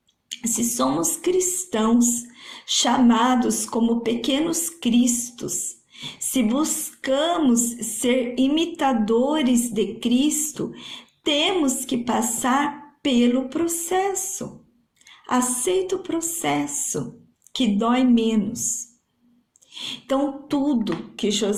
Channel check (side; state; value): both; identical; correlation 1.00